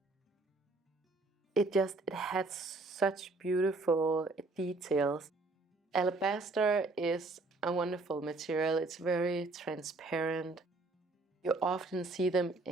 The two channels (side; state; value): left; quieter; 3.3 dB